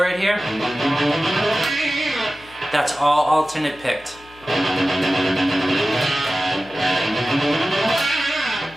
here, that's all alternate picked.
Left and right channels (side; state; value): left; noise; hum, 25 dB below the sound